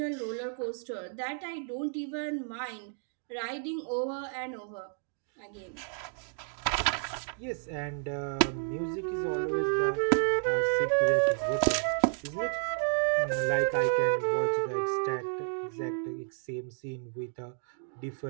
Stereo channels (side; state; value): left; silent; 57 dB below the other